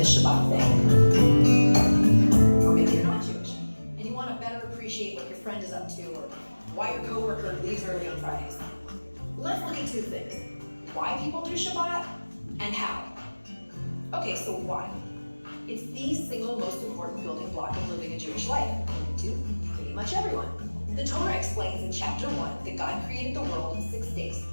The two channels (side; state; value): both; inverted; correlation -1.00